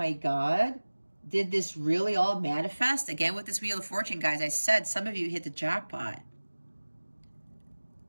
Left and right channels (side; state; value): both; inverted; correlation -1.00